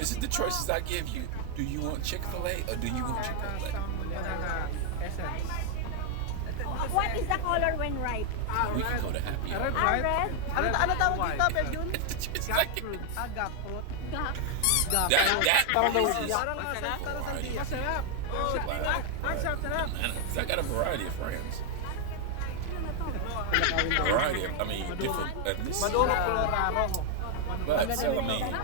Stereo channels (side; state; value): both; different; correlation 0.00